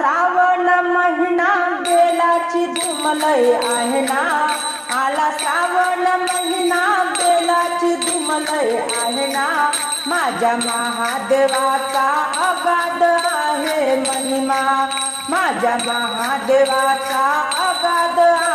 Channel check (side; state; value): both; identical; correlation 1.00